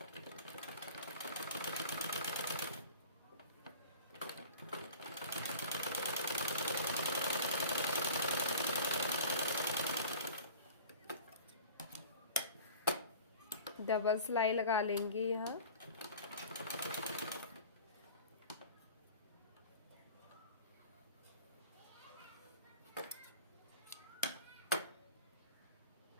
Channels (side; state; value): both; inverted; correlation -0.41